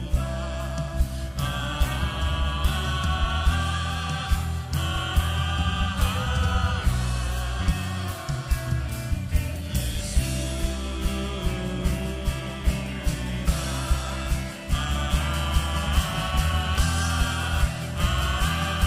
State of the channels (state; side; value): identical; both; correlation 1.00